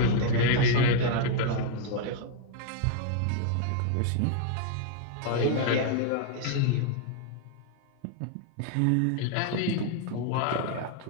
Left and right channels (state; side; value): different; both; correlation 0.00